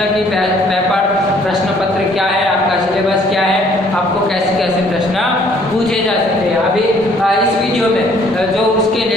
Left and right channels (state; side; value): normal; both; correlation 0.61